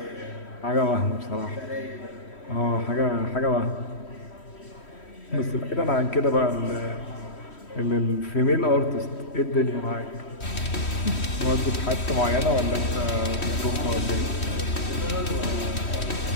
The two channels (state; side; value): late; right; 3.1 ms